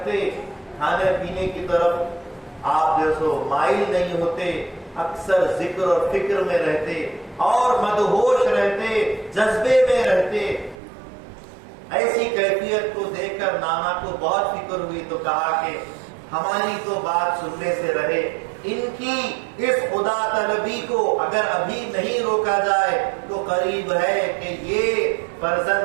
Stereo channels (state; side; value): drops out; left; at 10.8 s